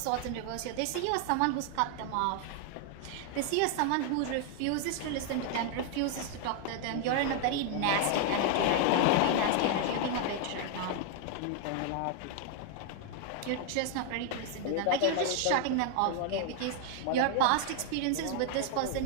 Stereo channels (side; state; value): both; different; correlation 0.00